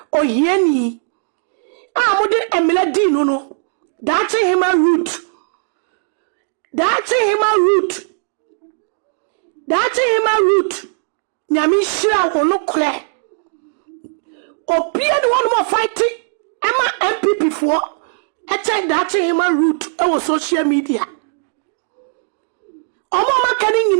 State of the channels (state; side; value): silent; left; 67 dB below the other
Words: Oyeni mudi emile di no Dachi hima root Nyami shira wono kle Opia the one more fighting Emma MPP for Eche dachi hima root Ewo social media Omo makani